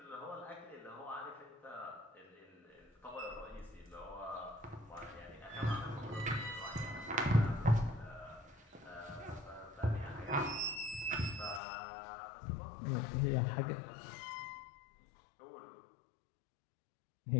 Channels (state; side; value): drops out; right; at 11.6 s